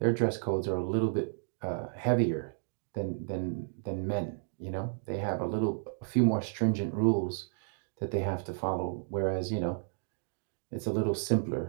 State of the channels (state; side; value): silent; left; digital silence